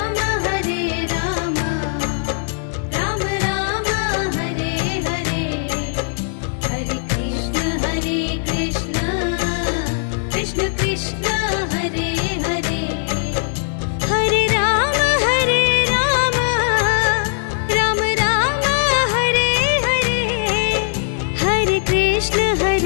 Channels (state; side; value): silent; right; 62 dB below the other